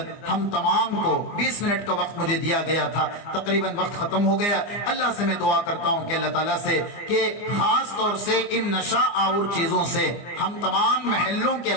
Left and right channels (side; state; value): right; late; 24 ms